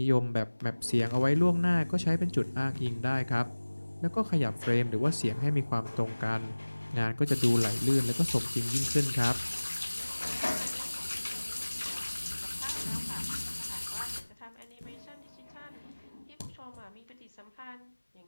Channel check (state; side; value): inverted; both; correlation -1.00